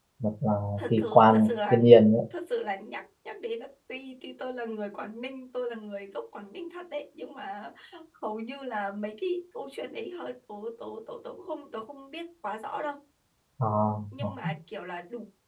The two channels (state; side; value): identical; both; correlation 1.00